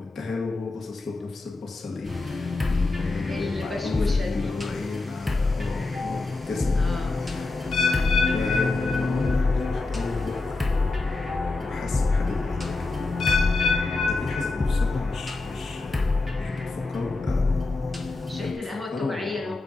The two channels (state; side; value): quieter; right; 3.3 dB